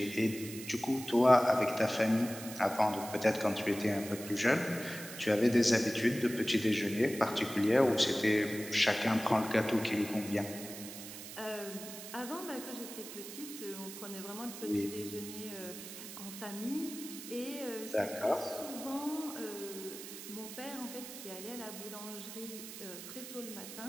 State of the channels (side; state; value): right; noise; hiss, 11 dB below the sound